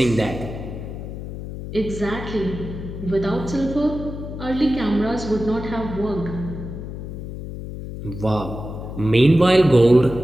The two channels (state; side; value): noise; left; hum, 9 dB below the sound